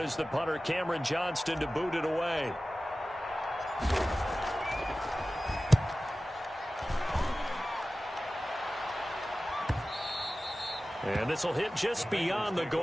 the punter, Cameron Johnston, to boot it away. And this will hit just beyond the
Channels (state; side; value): normal; both; correlation 0.96